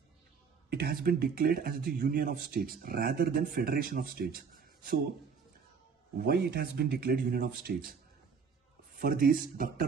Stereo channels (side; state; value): left; quieter; 5.9 dB